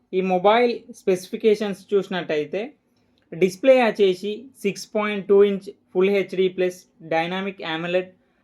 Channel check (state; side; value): identical; both; correlation 1.00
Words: ఈ మొబైల్ స్పెసిఫికేషన్స్ చూసినట్టయితే డిస్ప్లే వచ్చేసి 6.2 inch full HD plus dynamic AMOLED